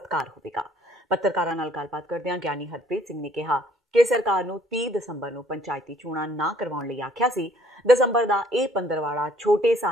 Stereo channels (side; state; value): both; normal; correlation 0.61